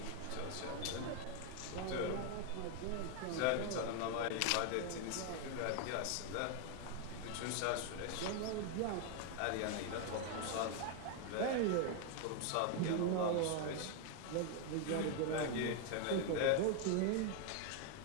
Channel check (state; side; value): different; both; correlation 0.00